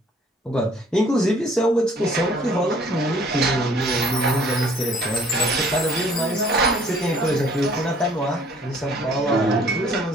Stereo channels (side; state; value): both; normal; correlation 0.57